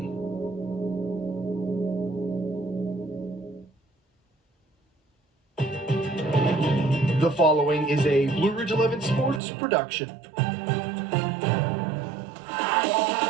The following is a Blue Ridge 11 Sports production.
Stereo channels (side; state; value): left; drops out; at 9.4 s